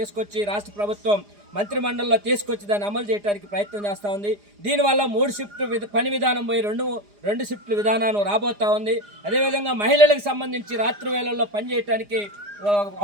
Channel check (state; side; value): late; left; 4.9 ms